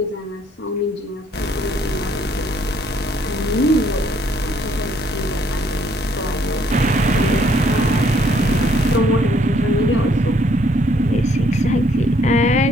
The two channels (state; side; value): normal; both; correlation 0.66